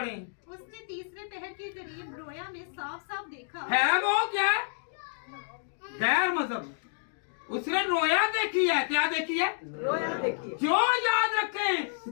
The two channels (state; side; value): silent; right; digital silence